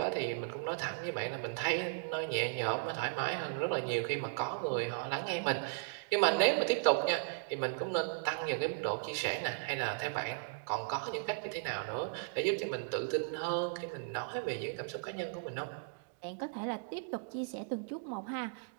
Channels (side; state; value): left; silent; digital silence